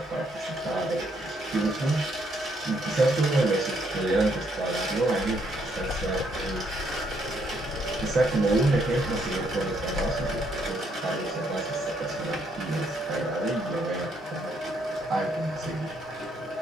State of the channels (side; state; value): both; normal; correlation 0.72